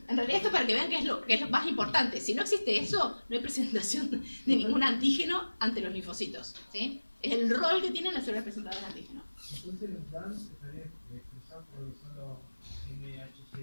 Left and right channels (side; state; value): both; inverted; correlation -1.00